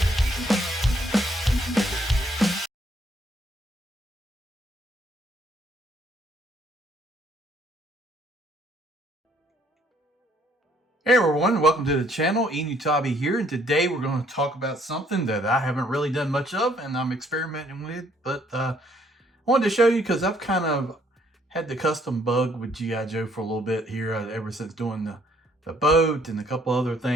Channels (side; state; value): both; normal; correlation 0.65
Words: Hey everyone, welcome to the channel. Enewtabie here, and today we're going to talk about something that I haven't really done much of and I'm experimenting with, but I wanted to show you because I've kind of had the custom bug with G.I. Joe for a little bit here ever since doing the boat and a couple other